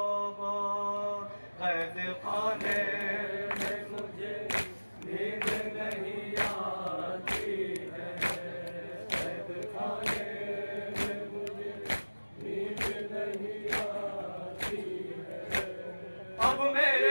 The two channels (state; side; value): inverted; both; correlation -1.00